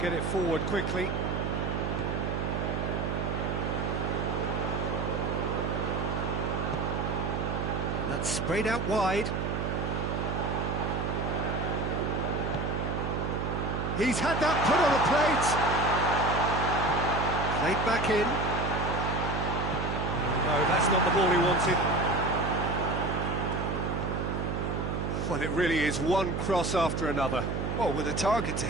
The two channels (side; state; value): right; noise; hum, 1 dB below the sound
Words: it forward quickly. And that's sprayed out wide. He's had that put on a plate. Played back in. No, that's not the ball he wanted. Well, it really is one cross after another. Well, with a target to